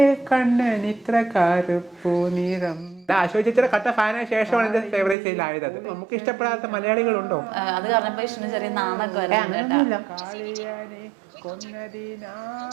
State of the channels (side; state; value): left; drops out; at 5.2 s